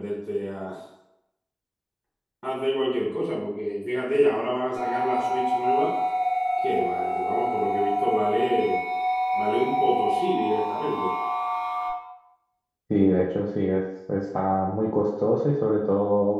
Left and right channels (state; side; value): identical; both; correlation 1.00